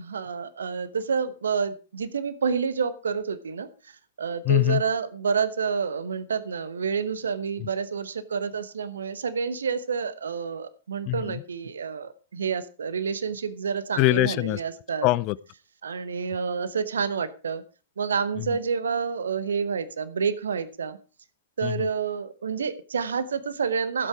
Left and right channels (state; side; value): inverted; both; correlation -0.51